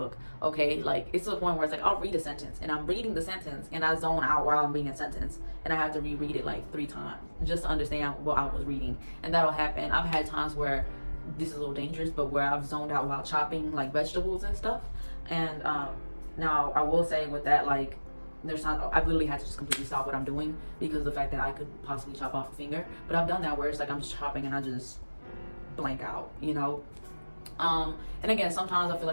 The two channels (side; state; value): both; inverted; correlation -1.00